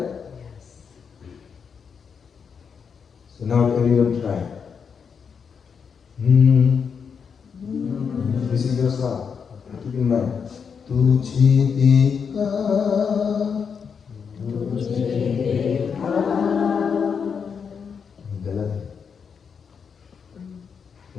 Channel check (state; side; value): quieter; right; 6.4 dB